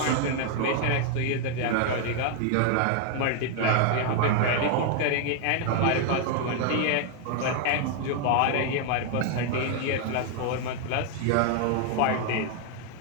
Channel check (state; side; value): different; both; correlation 0.00